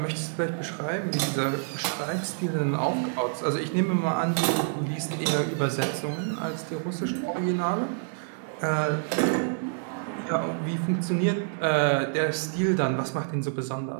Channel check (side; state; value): left; silent; 60 dB below the other